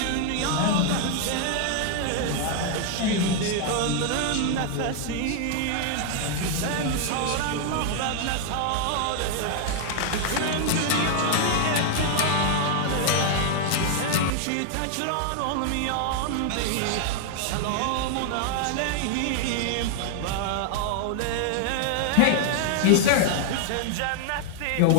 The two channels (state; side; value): different; both; correlation 0.00